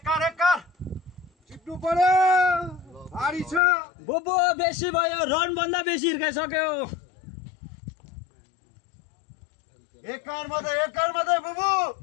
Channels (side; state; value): right; drops out; at 3.6 s